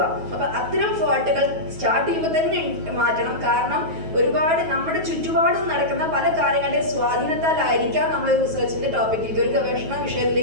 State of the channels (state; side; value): late; left; 9.3 ms